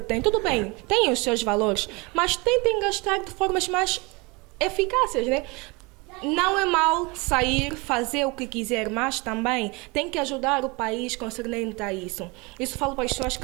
têm. Tudo bem, têm os seus valores, mas tentem gastar de formas mais eficazes, né? Não é mal sair, fazer o que quiser, mas também tem que ajudar o país concernente a isso. Isso falo para as pessoas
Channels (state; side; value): quieter; left; 26.8 dB